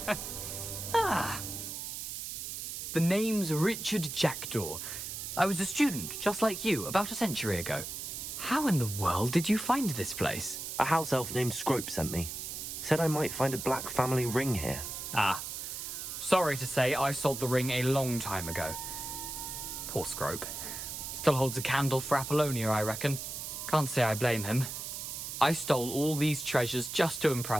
Ah! The name's Richard Jackdaw. I was a student, just like you, about a century ago. How in the world did you find this place? A house elf named Scrope sent me. Said I might find a black family ring here. Ah. Sorry to say, I sold the ring a long time ago. Poor Scrope. Still holds a candle for Apollonia, I reckon. Can't say I blame him. I stole all these treasures just to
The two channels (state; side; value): noise; right; hiss, 6 dB below the sound